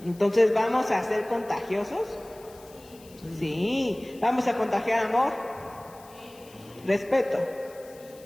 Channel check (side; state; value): left; noise; hiss, 24 dB below the sound